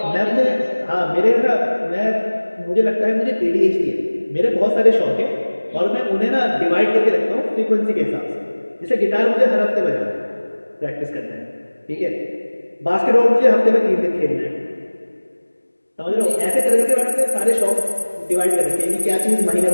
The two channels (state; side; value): inverted; both; correlation -1.00